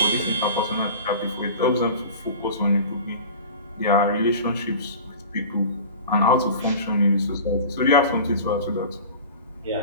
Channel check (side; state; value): both; inverted; correlation -0.38